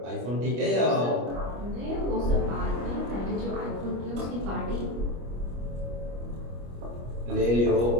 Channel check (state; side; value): late; left; 25 ms